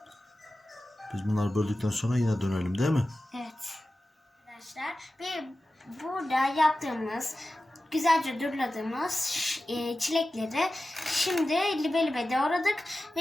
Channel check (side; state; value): both; normal; correlation 0.94